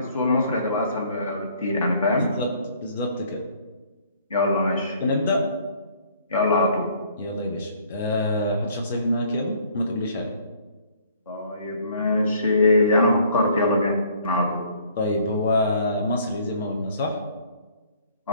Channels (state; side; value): inverted; both; correlation -0.59